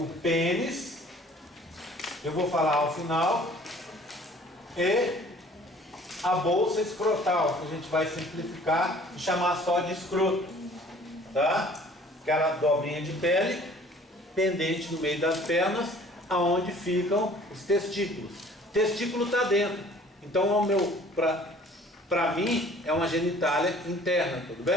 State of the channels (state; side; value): normal; both; correlation 0.52